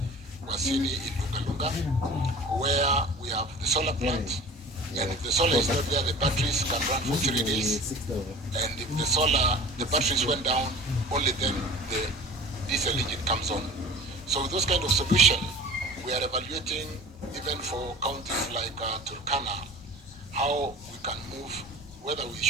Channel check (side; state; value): both; normal; correlation 0.40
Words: in Lunga, where we have the solar plant, and if the solar is not there, the batteries can run for 3 days, and if the batteries went down, only then the diesel engine comes on. So with those kind of solution, we are evaluating even for counties like Turkana, how we can move, whether we